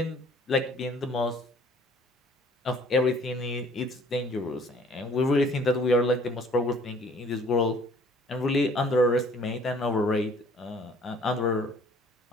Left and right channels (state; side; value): normal; both; correlation 0.55